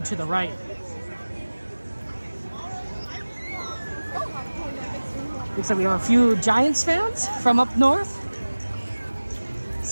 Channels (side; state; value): both; inverted; correlation -1.00